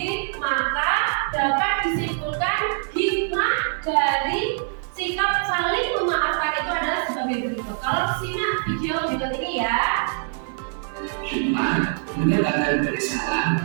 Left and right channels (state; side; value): silent; left; digital silence